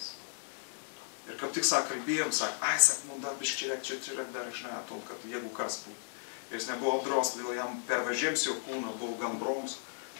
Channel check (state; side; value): silent; right; 55 dB below the other